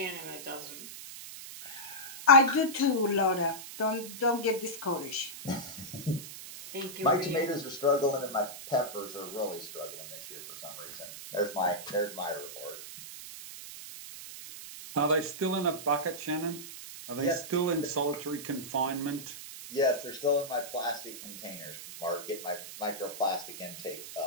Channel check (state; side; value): noise; right; hiss, 12 dB below the sound